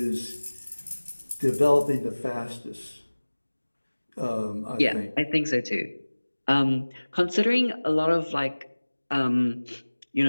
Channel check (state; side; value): inverted; both; correlation -1.00